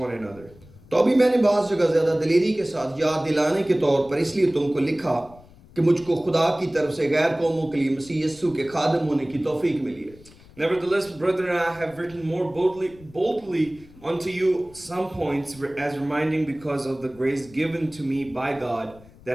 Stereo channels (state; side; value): noise; left; rumble, 23 dB below the sound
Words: another. तो अभी मैंने बाज़ जगह ज़्यादा दिलेरी के साथ याद दिलाने के तौर पर इसलिए तुमको लिखा कि मुझको खुदा की तरफ से गैर कौमों के लिए मसीह यीशु के खादिम होने की तौफीक मिली है। Nevertheless, brethren, I have written more boldly unto you some points, as reminding because of the grace given to me by God,